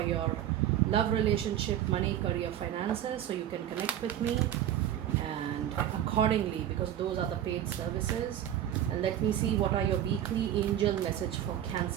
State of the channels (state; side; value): quieter; left; 11.2 dB